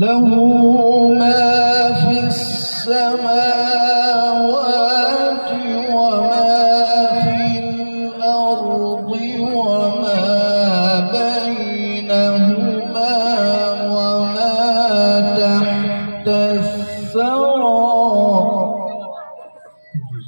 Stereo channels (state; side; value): inverted; both; correlation -1.00